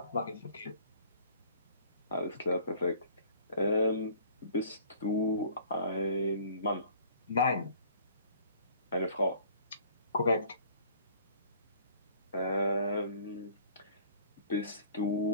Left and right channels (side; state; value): both; inverted; correlation -0.53